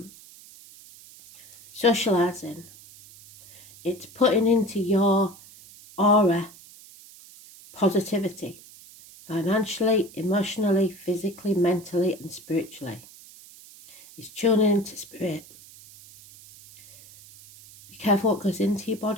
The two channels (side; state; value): right; noise; hiss, 21 dB below the sound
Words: Socialising. It's putting into your aura positivity. Financially, emotionally, physically, mentally and spiritually. It's tuning into spirit. Be careful what goes into your